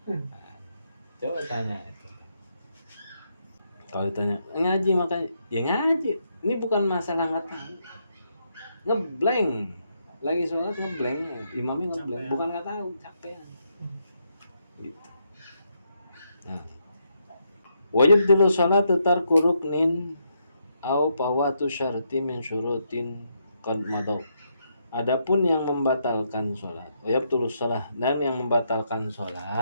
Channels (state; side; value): inverted; both; correlation -0.78